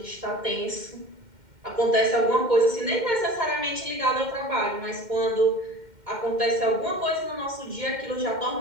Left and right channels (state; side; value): late; left; 2.1 ms